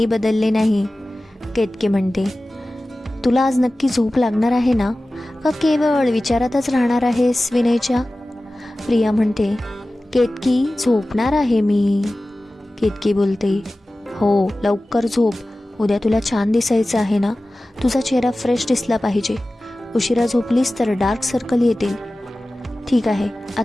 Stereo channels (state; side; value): normal; both; correlation 0.96